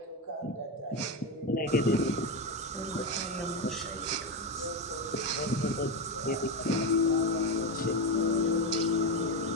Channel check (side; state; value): both; normal; correlation 0.13